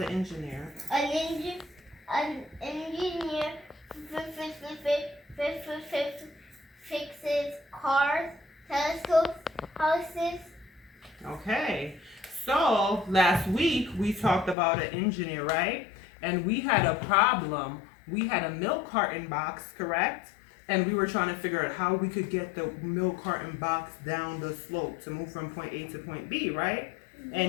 engineer? An engineer fixes cars, telescopes, houses. Okay. So last week we talked about an engineer, right? And we had a problem. We had a milk carton box, correct? And we were trying to figure out how we could get the milk carton box down the slope to move from point A to point B, right? Yeah.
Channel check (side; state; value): right; drops out; at 14.6 s